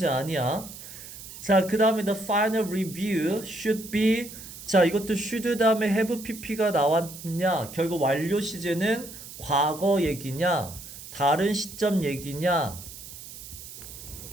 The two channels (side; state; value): right; noise; hiss, 14 dB below the sound